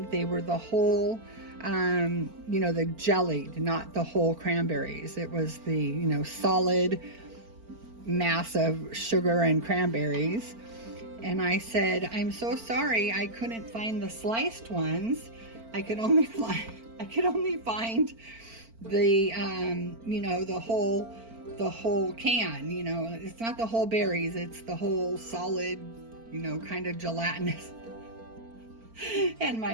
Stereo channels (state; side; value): late; left; 4.4 ms